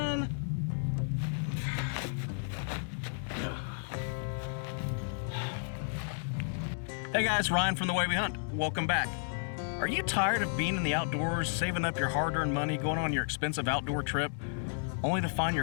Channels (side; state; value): right; silent; digital silence